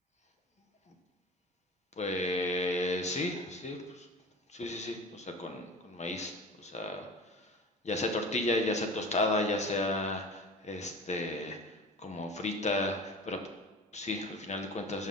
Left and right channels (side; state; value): both; normal; correlation 0.36